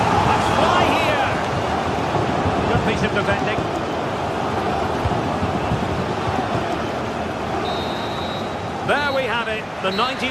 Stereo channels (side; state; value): both; identical; correlation 1.00